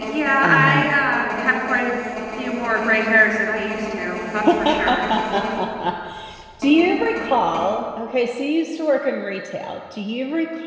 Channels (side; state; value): both; identical; correlation 1.00